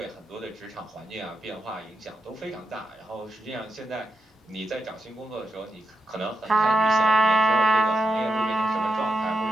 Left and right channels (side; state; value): both; normal; correlation 0.85